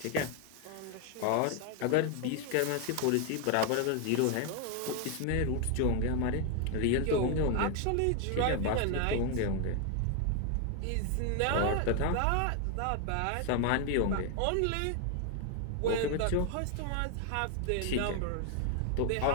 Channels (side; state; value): both; different; correlation 0.01